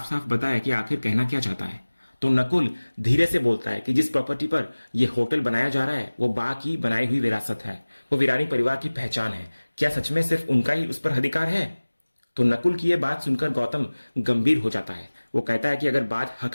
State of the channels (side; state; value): both; inverted; correlation -1.00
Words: साफ बताए कि आखिर कहना क्या चाहता है। तो नकुल धीरे से बोलता है कि जिस प्रॉपर्टी पर यह होटल बनाया जा रहा है वो बा की बनाई हुई विरासत है, वो वीरानी परिवार की पहचान है। क्या सच में सिर्फ उनका ही उस पर अधिकार है? तो नकुल की यह बात सुनकर गौतम गंभीर हो जाता है। वो कहता है कि अगर बात हक